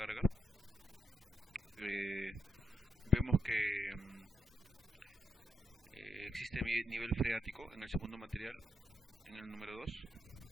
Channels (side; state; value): both; normal; correlation 0.80